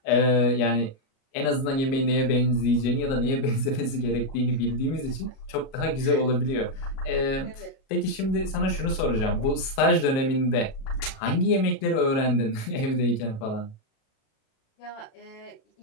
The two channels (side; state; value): right; late; 37 ms